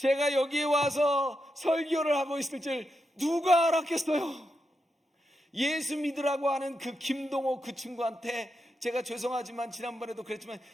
여기에 와서 설교를 하고 있을 줄 누가 알았겠어요? 예수 믿으라고 하는 그 김동호 그 친구한테 제가 죄송하지만 지난번에도 그랬지만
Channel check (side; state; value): both; normal; correlation 0.86